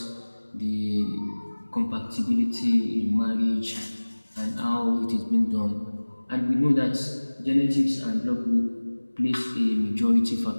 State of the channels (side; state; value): both; inverted; correlation -1.00